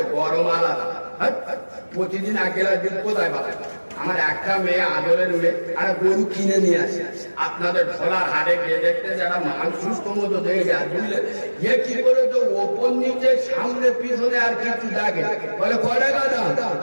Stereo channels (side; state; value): both; inverted; correlation -1.00